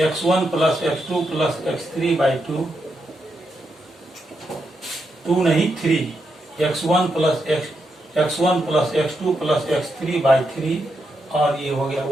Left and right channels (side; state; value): both; normal; correlation 0.83